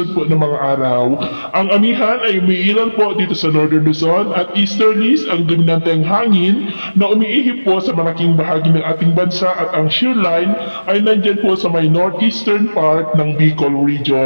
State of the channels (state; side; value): inverted; both; correlation -1.00